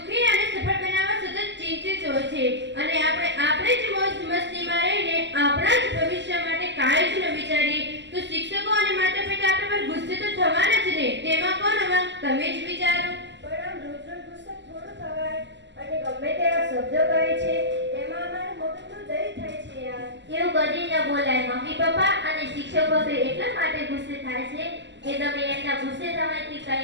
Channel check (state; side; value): late; left; 0.52 ms